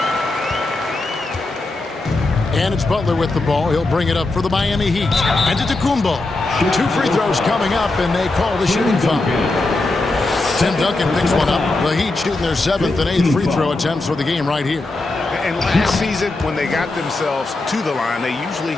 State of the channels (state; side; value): quieter; right; 3.1 dB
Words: And it's Butler with the ball. He'll bring it up for the Miami Heat. And Antetokounmpo. 2 free throws coming up, and they call the shooting foul. Tim Duncan picks one up. The Heat shooting their 7th and 8th free throw attempts for the game right here. And last season, when they got themselves to the line, they